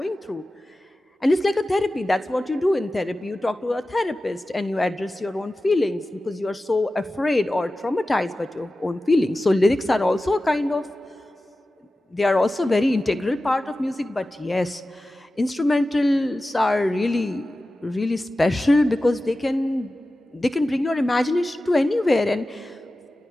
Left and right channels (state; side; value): normal; both; correlation 0.95